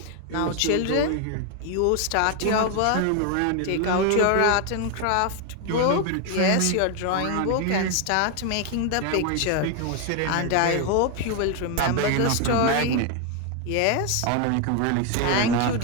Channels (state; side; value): different; both; correlation 0.01